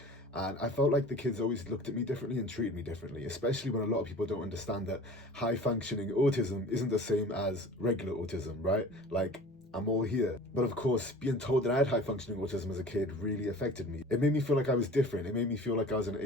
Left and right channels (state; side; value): normal; both; correlation 0.42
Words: And I felt like the kids always looked at me differently and treated me differently, especially when a lot of people don't understand that high functioning autism isn't the same as regular autism, right? Like, I'm all here. But of course, being told that I had high functioning autism as a kid really affected me. It made me feel like I was different. It made me feel like I was an